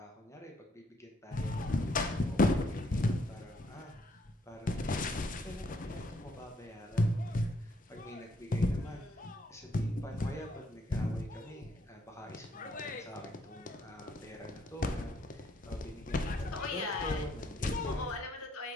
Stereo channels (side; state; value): both; normal; correlation 0.70